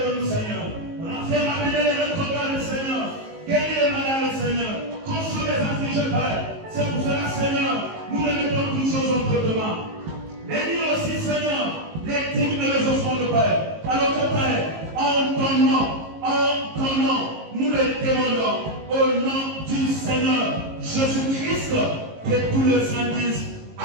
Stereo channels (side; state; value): left; late; 19 ms